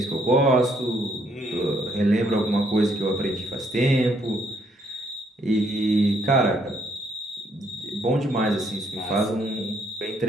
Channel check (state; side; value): normal; both; correlation 0.70